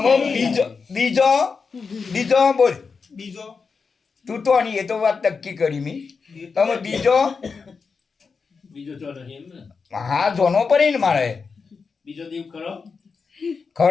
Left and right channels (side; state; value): right; quieter; 5.1 dB